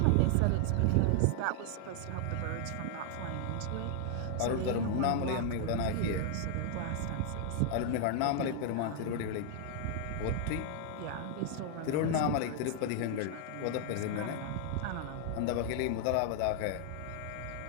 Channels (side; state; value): both; different; correlation 0.00